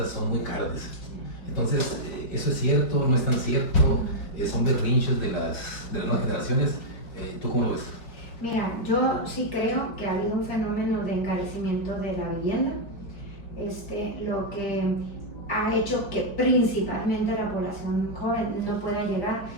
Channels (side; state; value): right; late; 4.9 ms